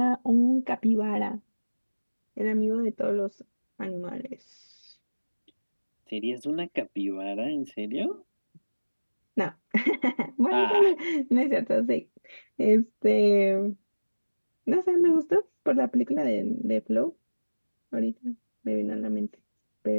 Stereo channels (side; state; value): both; inverted; correlation -1.00